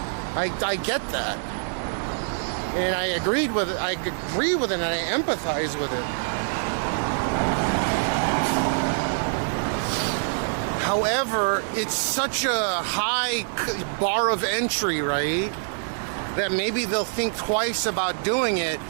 I get that. And I agree with it, and I empathize with it. However, it's such a high bar of entry, right? That maybe they'll think twice about doing it,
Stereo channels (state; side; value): silent; left; digital silence